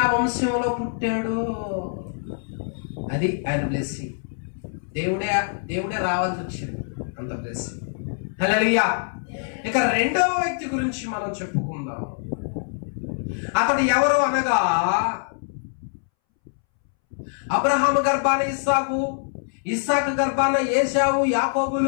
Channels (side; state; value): right; silent; 62 dB below the other